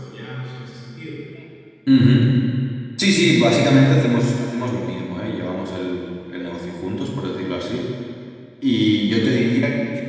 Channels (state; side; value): identical; both; correlation 1.00